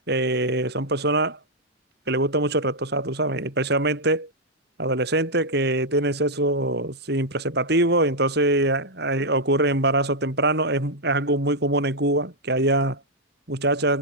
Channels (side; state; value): both; normal; correlation -0.04